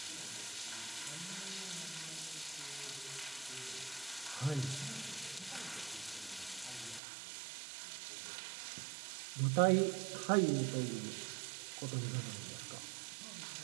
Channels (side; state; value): left; drops out; at 7.0 s